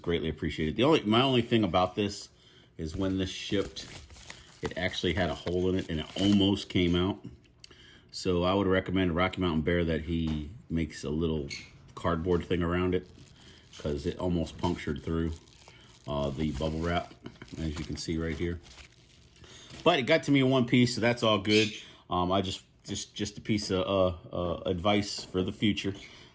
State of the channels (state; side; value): identical; both; correlation 1.00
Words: appreciated. My only thing about this is when this shipped, it actually had a hole in it and it almost came out. So I would recommend Rocky Mountain Bear that he makes a little cardboard thing around it, because it almost punctured through the bubble wrap, as you can see right here. But it got to me in one piece, so that's all good. I just a piece of advice for the future.